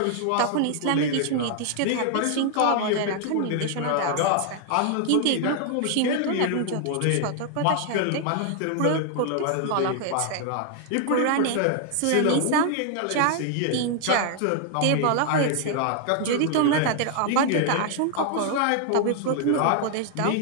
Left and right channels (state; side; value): different; both; correlation 0.00